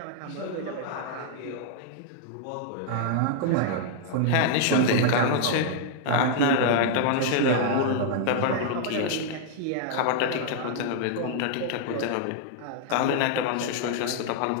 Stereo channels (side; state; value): both; different; correlation -0.01